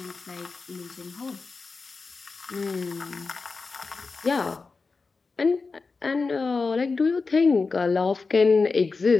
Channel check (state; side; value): quieter; right; 4.3 dB